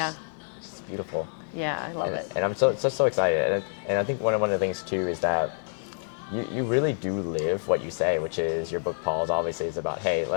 just beautiful. Yeah, I love it. And I'm so excited. And I think one of the things, too, is that you really do live what you say, which is your book, Paul's, obviously is about, hey,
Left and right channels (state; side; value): silent; right; digital silence